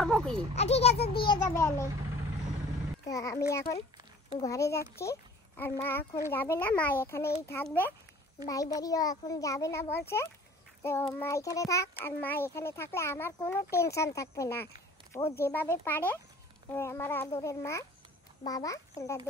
কি? ঠিক আছে দিয়ে যাবে আমি। তো আমি এখন ঘরে যাচ্ছি আর মা এখন যাবে না, মা এখানেই থাকবে। ভাই বাড়িও এখন যাবে না বলছে। তো মা এখানে থাক, আর মা এখানে থাকলে আমার কোনো টেনশন থাকবে না। ও যেভাবে পারে আমার আদরের মা বাবা সেটা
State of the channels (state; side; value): normal; both; correlation 0.48